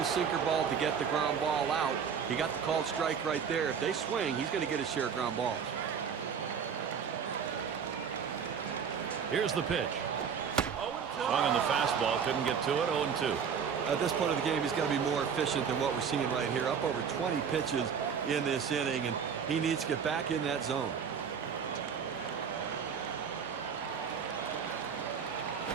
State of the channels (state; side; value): quieter; left; 7.0 dB